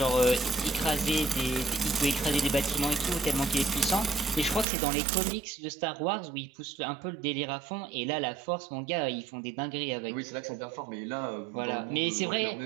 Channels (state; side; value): drops out; left; at 4.7 s